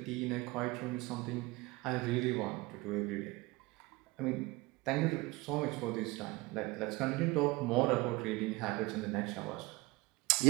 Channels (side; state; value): left; quieter; 22.7 dB